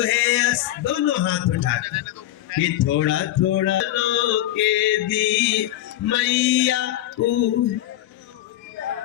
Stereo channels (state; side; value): quieter; right; 14.1 dB